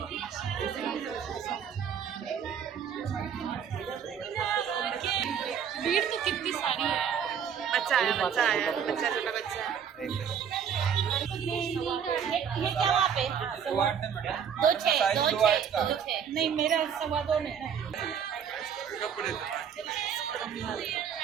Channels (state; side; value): quieter; left; 7.8 dB